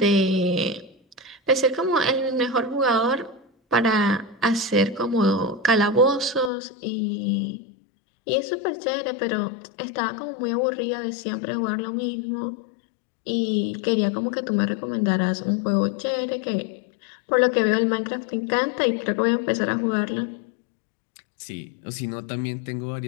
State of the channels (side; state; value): right; drops out; at 6.5 s